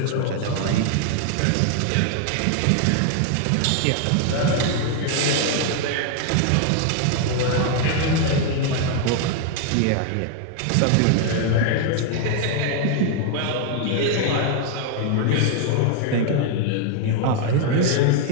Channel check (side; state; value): both; different; correlation 0.01